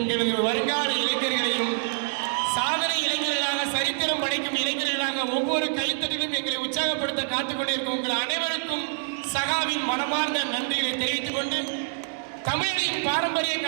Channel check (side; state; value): left; silent; 61 dB below the other